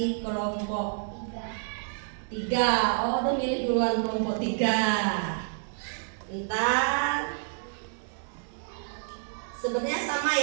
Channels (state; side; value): silent; left; digital silence